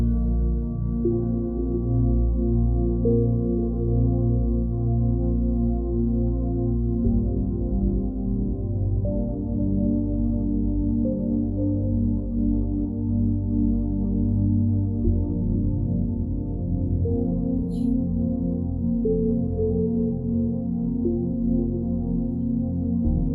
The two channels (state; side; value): identical; both; correlation 1.00